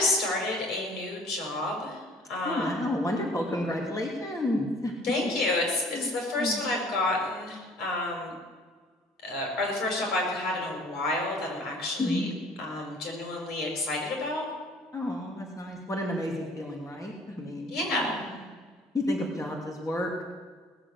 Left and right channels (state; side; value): normal; both; correlation 0.53